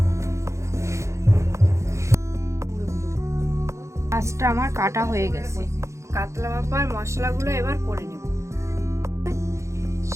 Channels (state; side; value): late; left; 0.14 ms